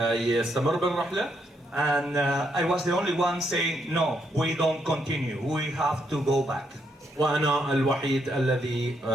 بالرحلة. And I was the only one saying, no, we don't continue, we have to go back. وأنا الوحيد الذي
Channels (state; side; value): normal; both; correlation 0.77